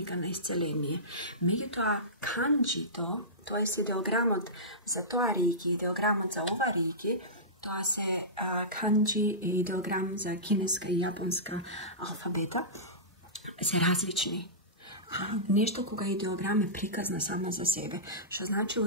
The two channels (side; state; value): both; normal; correlation -0.18